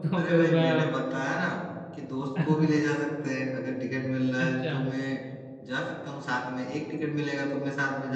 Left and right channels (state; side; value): identical; both; correlation 1.00